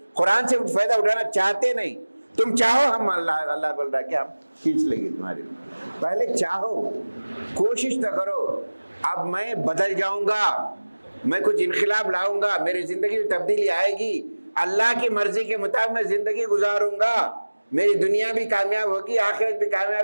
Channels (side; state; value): both; inverted; correlation -1.00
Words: قرآن سے فائدہ اٹھانا چاہتے نہیں. تم چاہو ہم اللہ بول رہا ہے کہ ہم کھینچ لیں گے تمہارے لیے. پہلے چاہو، کوشش تو کرو. اب میں بدل جاؤں گا، میں کچھ انقلاب لاؤں گا، میری زندگی میں تبدیلی آئے گی، اللہ کی مرضی کے مطابق میں زندگی گزاروں گا، میری دنیا بھی کامیاب ہوگی، آخرت بھی